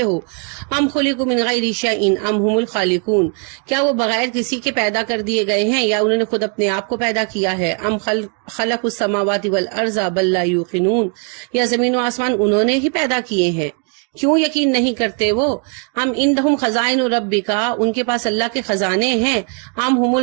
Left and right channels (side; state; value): left; quieter; 39.9 dB